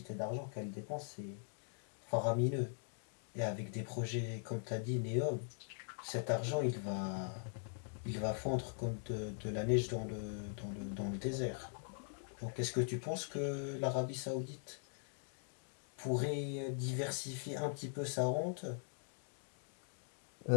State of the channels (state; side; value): silent; right; digital silence